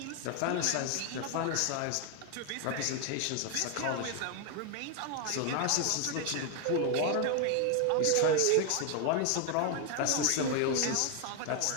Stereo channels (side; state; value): both; different; correlation 0.00